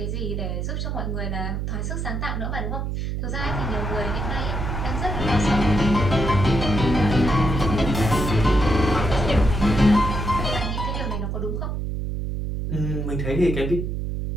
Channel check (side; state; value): right; noise; hum, 2 dB below the sound